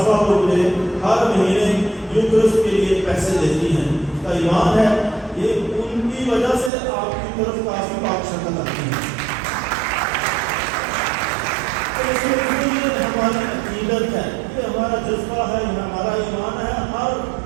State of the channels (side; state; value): left; drops out; at 6.7 s